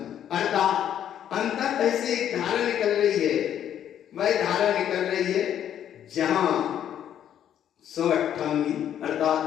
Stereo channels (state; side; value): quieter; right; 10.1 dB